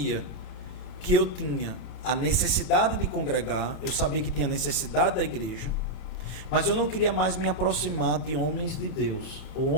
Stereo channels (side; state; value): right; late; 30 ms